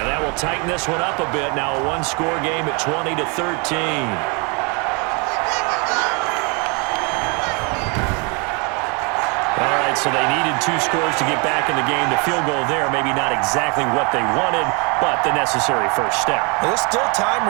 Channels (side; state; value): left; quieter; 32.4 dB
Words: that will tighten this one up a bit. Now a 1-score game at 20-13. So they needed 2 scores to get back in the game. The field goal there, maybe not exactly what they wanted, but the necessary first step. There's still time